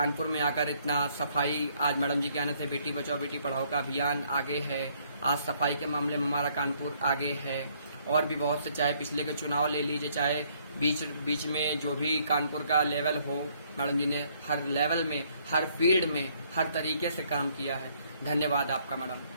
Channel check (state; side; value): inverted; both; correlation -0.66